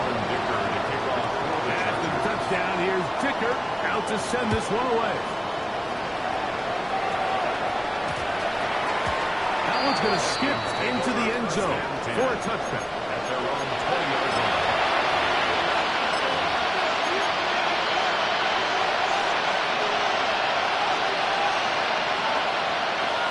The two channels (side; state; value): both; identical; correlation 1.00